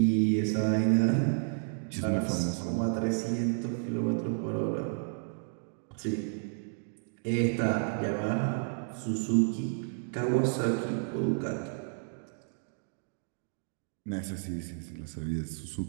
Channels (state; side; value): silent; left; digital silence